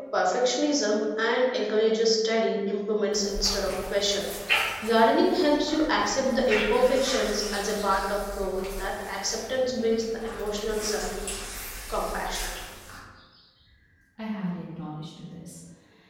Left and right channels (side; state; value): both; identical; correlation 1.00